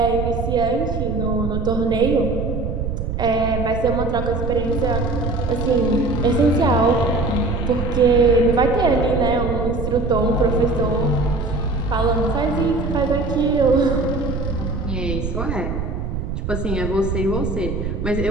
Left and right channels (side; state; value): right; noise; rumble, 3 dB below the sound